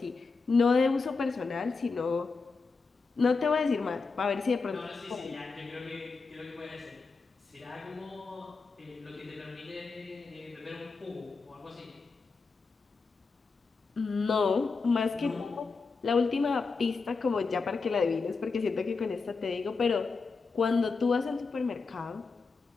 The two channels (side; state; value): right; quieter; 4.5 dB